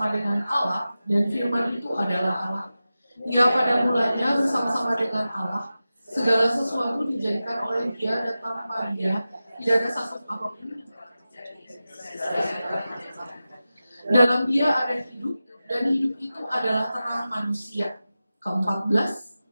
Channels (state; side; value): inverted; both; correlation -0.94